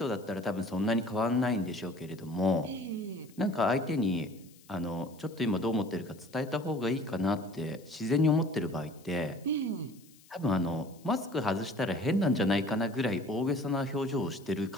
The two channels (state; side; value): noise; left; hiss, 26 dB below the sound